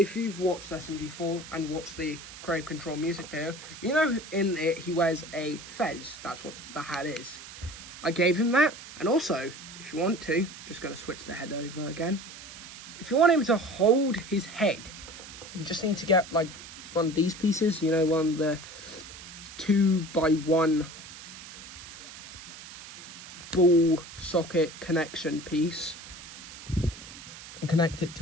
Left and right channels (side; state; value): right; noise; hiss, 15 dB below the sound